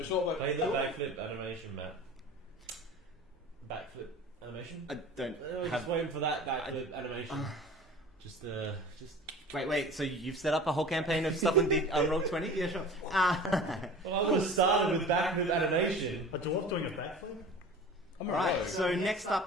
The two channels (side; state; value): both; normal; correlation 0.39